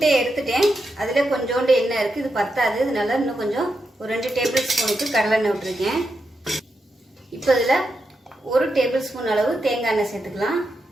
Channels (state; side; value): normal; both; correlation 0.85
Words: எடுத்துட்டேன். அதில் கொஞ்சோண்டு எண்ணெய் இருக்குது, இது பத்தாது. இதனால இன்னும் கொஞ்சம் ஒரு 2 டேபிள் ஸ்பூனுக்கு கடலெண்ணெய் விட்டுருக்கேன். இப்போ இதில் 1 டேபிள் ஸ்பூன் அளவு தேங்காய் எண்ணெய் சேர்த்துக்கலாம்.